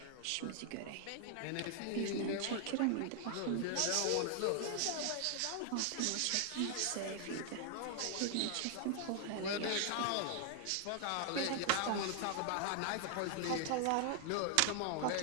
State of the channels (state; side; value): different; both; correlation 0.00